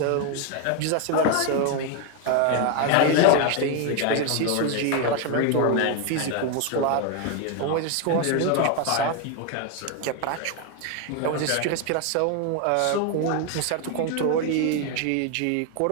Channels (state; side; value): different; both; correlation 0.01